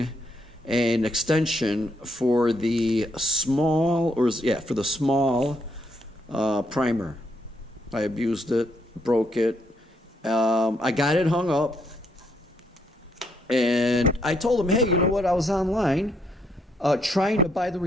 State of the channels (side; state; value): both; normal; correlation 0.74